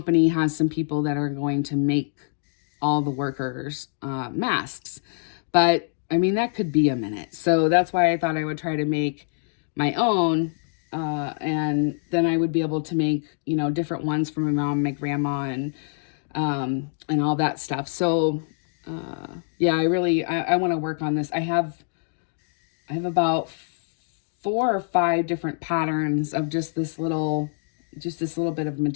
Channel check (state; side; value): silent; right; digital silence